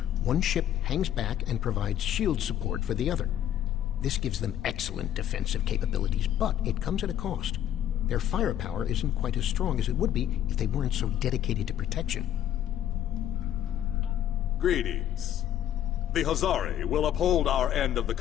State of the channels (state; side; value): quieter; right; 11.1 dB